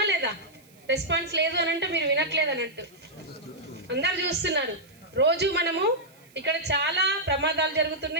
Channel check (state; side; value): noise; right; hiss, 29 dB below the sound